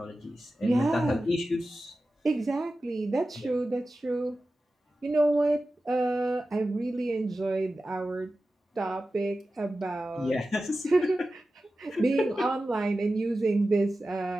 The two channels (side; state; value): both; normal; correlation 0.94